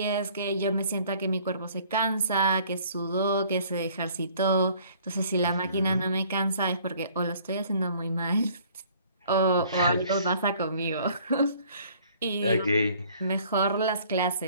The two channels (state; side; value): inverted; both; correlation -0.57